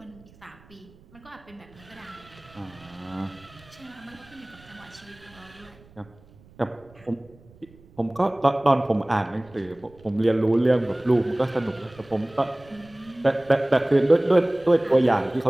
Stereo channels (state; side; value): noise; right; rumble, 26 dB below the sound